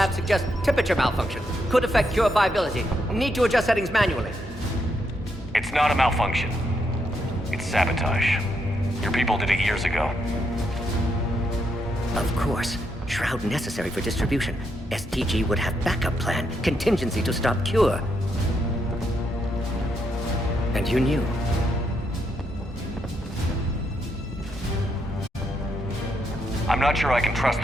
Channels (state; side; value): normal; both; correlation 0.79